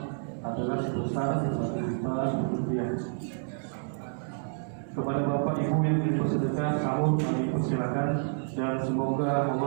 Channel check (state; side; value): silent; left; digital silence